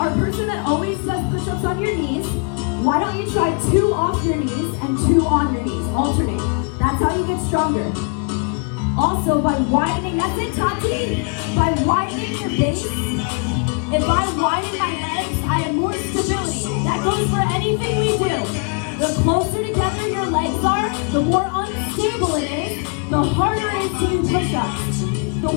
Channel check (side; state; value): right; quieter; 36.0 dB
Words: a person that always does push-ups on your knees, why don't you try 2 off your knees and 2 on your knees? Alternate. That's how you get stronger. Also, by widening, that's it, Tati. By widening your base, if I widen my legs, I have more stability. That goes for anything we do. The closer together your legs are, the more unstable it is, the harder it is to do push-ups. The